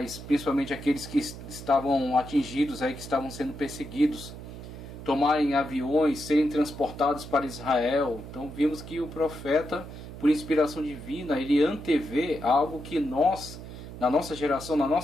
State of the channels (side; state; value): right; noise; hum, 12 dB below the sound